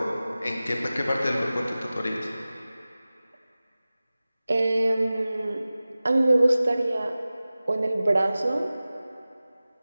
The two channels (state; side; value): inverted; both; correlation -0.97